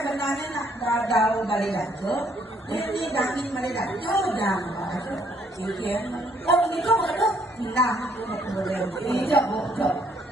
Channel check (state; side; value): normal; both; correlation 0.66